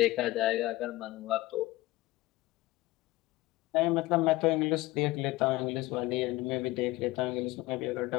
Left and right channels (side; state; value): right; quieter; 18.8 dB